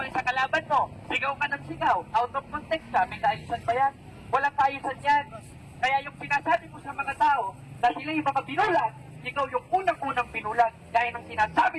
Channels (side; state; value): both; identical; correlation 1.00